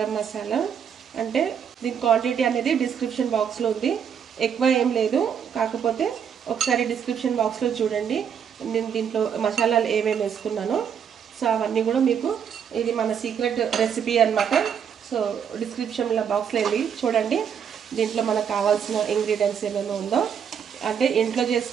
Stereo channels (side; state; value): left; quieter; 7.8 dB